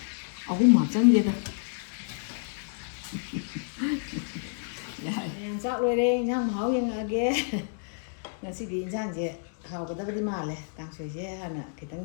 ꯑꯍꯨꯝ ꯍꯥꯞꯆꯟꯒꯦꯗ ꯆꯥꯛ ꯂꯣꯏꯔꯦ ꯏꯟꯁꯥꯡ ꯃꯍꯥꯎ ꯌꯦꯡꯉꯛꯑꯒꯦ ꯉꯁꯤꯗꯤ ꯏꯟꯁꯥꯡꯁꯦ ꯍꯥꯎꯒꯗꯕꯗꯤ ꯃꯥꯜꯂꯦ ꯀꯥꯡꯁꯣꯏꯁꯦ ꯍꯥꯟꯅ ꯈꯤꯇꯪ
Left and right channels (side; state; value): right; silent; digital silence